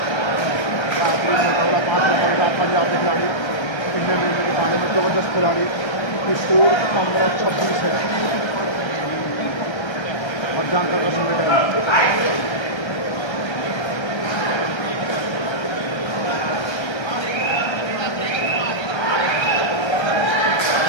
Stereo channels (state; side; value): late; right; 1.3 ms